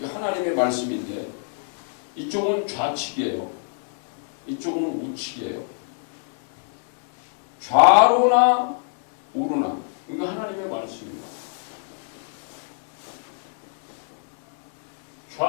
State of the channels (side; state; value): right; silent; digital silence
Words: 말씀인데 이쪽은 좌측이에요. 이쪽은 우측이에요. 좌로나 우로나 이거 하나님의 말씀입니다.